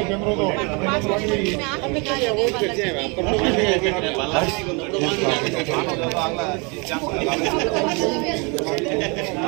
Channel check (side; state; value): left; quieter; 31.1 dB